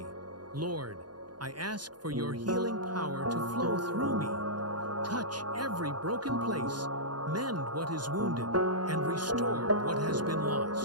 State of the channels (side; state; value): left; late; 0.70 ms